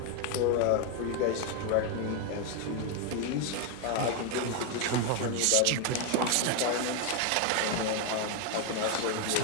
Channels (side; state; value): both; different; correlation 0.01